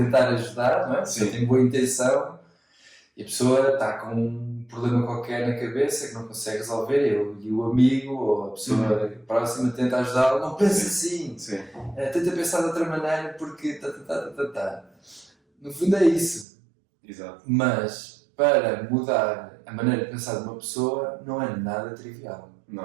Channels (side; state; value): left; drops out; at 16.4 s